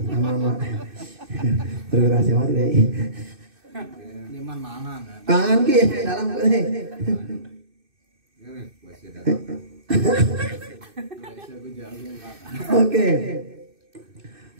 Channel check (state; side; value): late; left; 2.6 ms